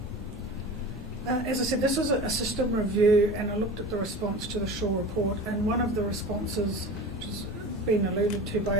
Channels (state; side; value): normal; both; correlation 0.34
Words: As I said, this was a system review, and I looked at the response to the Shaw report, and one of the responses, which has been alluded to by